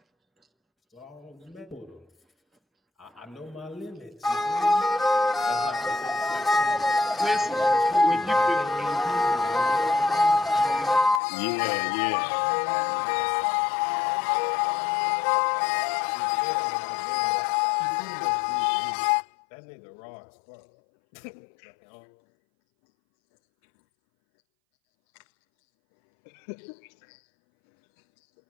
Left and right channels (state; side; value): drops out; right; at 11.2 s